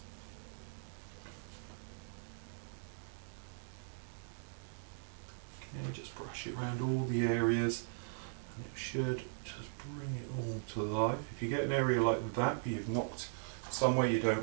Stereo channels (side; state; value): left; silent; digital silence